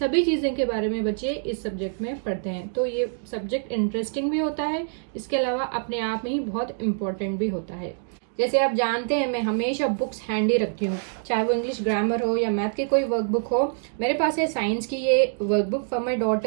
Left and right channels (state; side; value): silent; left; digital silence